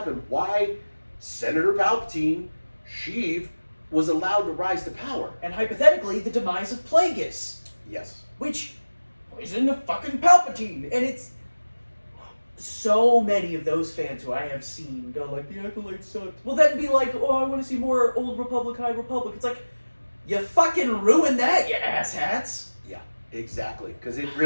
Why Senator Palpatine, Sheev, was allowed to rise to power. And hypothetically, the demise of Plagueis. Yes. Which is in the fucking Palpatine. And it's so many of those fans who I have seen go like, the Acolyte sucked. Will then be like, oh, I want to see more Old Republic, High Republic. It's like, you fucking ruined that, you asshats. Yeah, exactly. Because it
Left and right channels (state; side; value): inverted; both; correlation -1.00